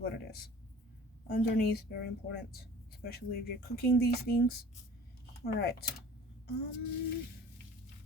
it is. underneath, very important, especially if you're cooking these things. All right.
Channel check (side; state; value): both; normal; correlation 0.46